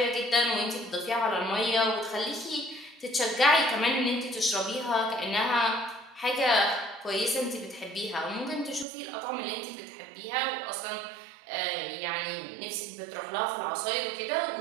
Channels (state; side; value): drops out; left; at 8.8 s